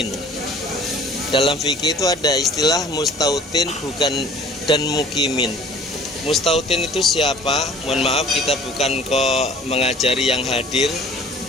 Dalam fikih itu ada istilah mustautin bukan dan mukimin. Mustautin itu siapa? Mohon maaf, kita bukan kok mengajari yang hadir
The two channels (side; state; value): both; normal; correlation 0.49